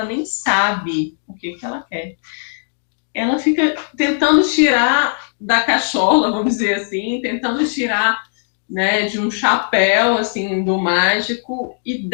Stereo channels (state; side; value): silent; right; digital silence